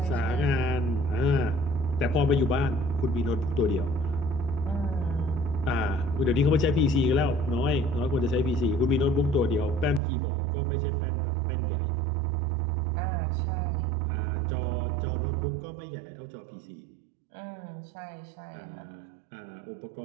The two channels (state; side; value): drops out; left; at 10.0 s